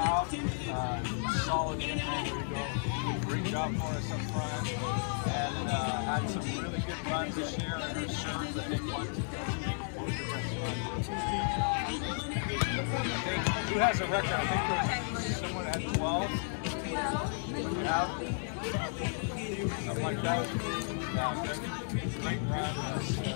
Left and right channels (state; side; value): silent; right; 56 dB below the other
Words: Solid in there. There we go. Great job for us up front. And had some really good runs this year in her serves. I think who has a record? I think there's someone that had 12. Yeah. Something like that. Great run on